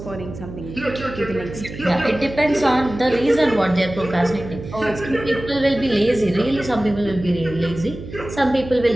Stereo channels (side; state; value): right; noise; hum, 12 dB below the sound